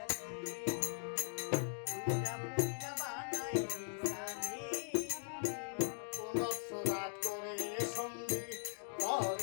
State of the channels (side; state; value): right; silent; digital silence